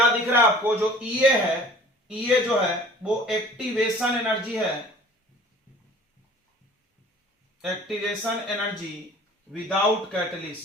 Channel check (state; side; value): normal; both; correlation 0.48